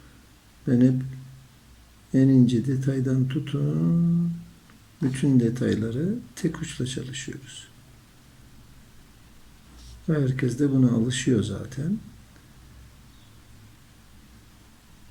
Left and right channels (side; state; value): both; identical; correlation 1.00